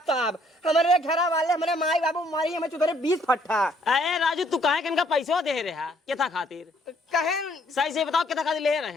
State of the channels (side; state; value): both; normal; correlation 0.64